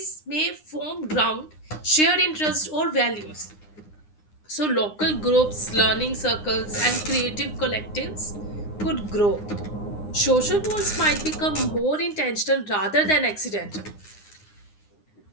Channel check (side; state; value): right; late; 9.8 ms